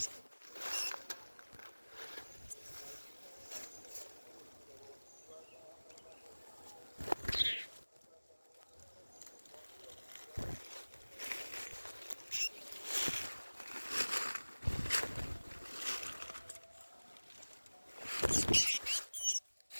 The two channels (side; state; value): both; inverted; correlation -1.00